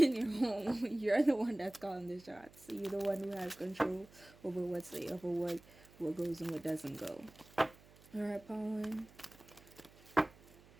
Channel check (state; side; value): noise; right; hum, 24 dB below the sound